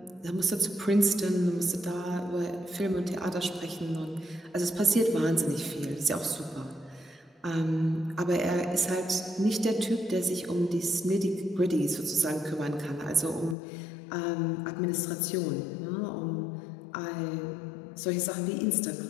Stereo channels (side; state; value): right; drops out; at 13.6 s